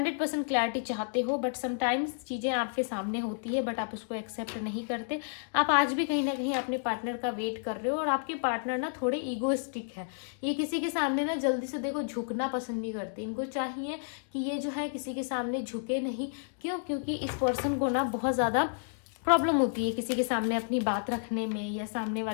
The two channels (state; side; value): silent; right; digital silence